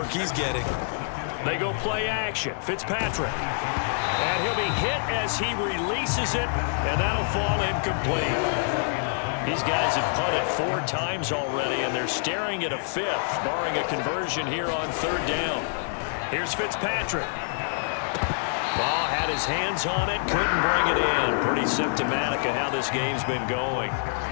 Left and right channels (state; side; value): silent; right; 61 dB below the other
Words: he's getting. They go play action. Fitzpatrick. And he'll be hit as he releases it, and that'll fall incomplete. These guys have punted 4 times already, and they're staring at a 5th, barring a conversion here on 3rd down. Here's Fitzpatrick. Ball had his hands on it, couldn't bring it in. Pretty symptomatic of how this game's been going.